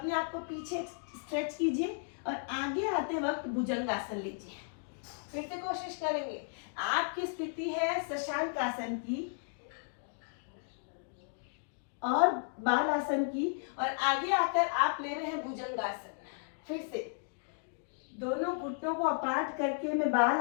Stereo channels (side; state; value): right; silent; digital silence